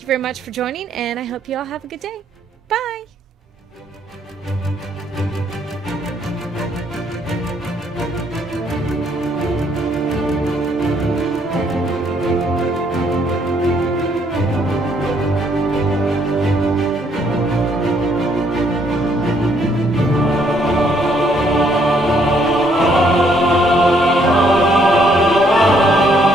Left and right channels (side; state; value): both; normal; correlation 0.68